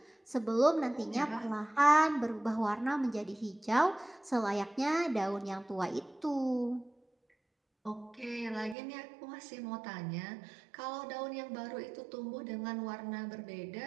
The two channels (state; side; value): drops out; left; at 8.8 s